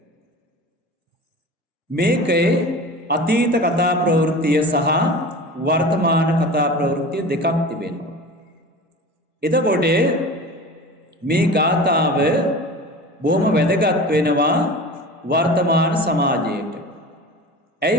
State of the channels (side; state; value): both; normal; correlation 0.35